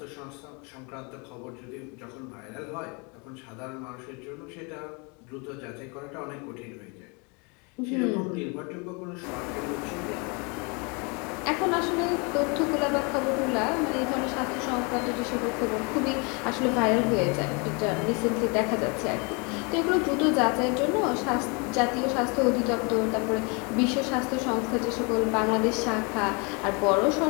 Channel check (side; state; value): right; quieter; 31.8 dB